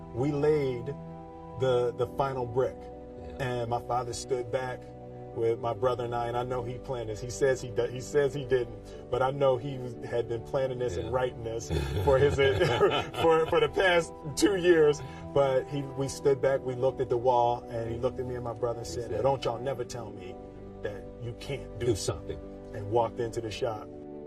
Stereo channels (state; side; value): identical; both; correlation 1.00